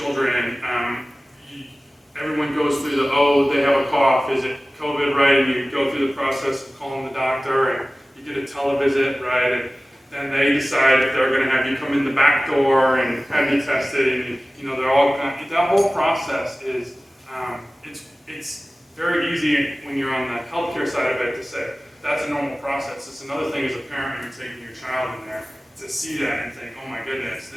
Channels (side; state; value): both; normal; correlation 0.97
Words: Everyone goes through they have a cough. Is it COVID, right? And you go through the process of calling the doctor, and you get a televisit, right? And then they decide if they're going to have you come in the back door and have you tested, and they're all that whole process is it's very easy when you're on the healthcare side of it to say that's a normal process. It's another thing as a parent when you're taking your child in there to see that and think, oh my goodness,